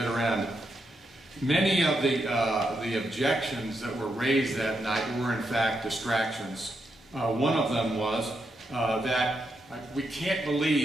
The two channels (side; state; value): both; normal; correlation 0.83